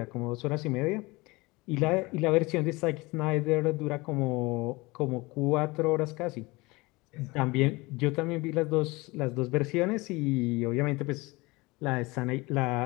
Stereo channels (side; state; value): right; quieter; 23.3 dB